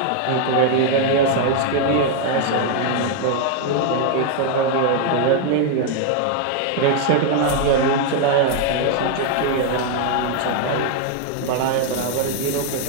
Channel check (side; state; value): both; different; correlation 0.00